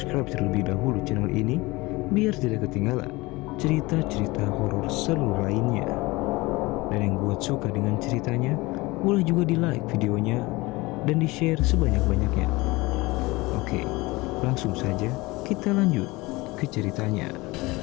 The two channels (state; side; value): quieter; right; 22.2 dB